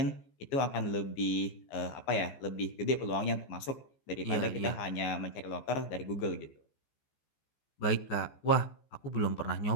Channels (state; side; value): late; right; 15 ms